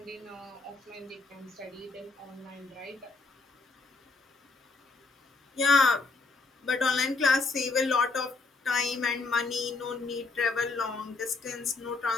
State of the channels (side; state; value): right; quieter; 3.9 dB